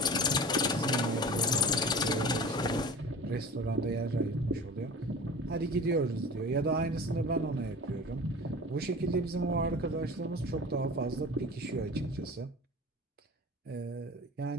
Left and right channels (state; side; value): normal; both; correlation 0.37